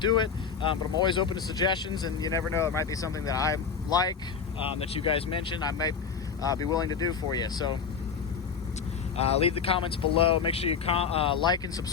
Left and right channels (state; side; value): quieter; right; 6.1 dB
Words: it, but I'm always open to suggestions, and you never know, it might be something that I like, that you guys mentioned, I might be willing to do for you. So leave the comments below. Make sure you like and